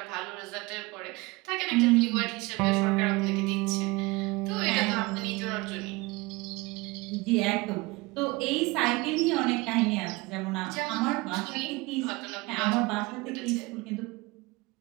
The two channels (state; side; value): quieter; left; 23.5 dB